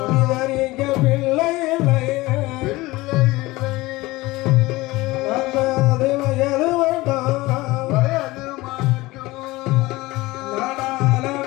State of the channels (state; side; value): quieter; right; 20.2 dB